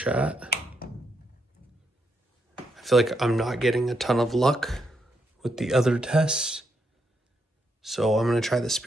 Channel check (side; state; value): both; normal; correlation 0.79